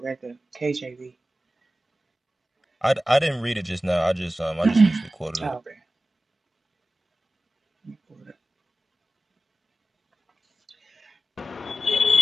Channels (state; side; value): normal; both; correlation 0.94